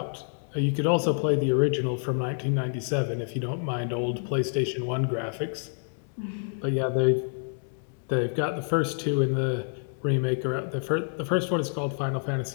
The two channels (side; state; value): right; silent; 60 dB below the other